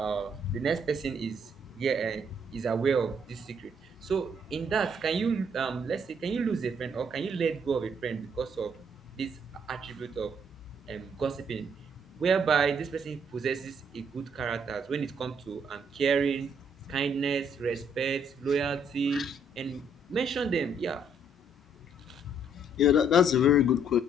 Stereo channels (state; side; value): normal; both; correlation 0.68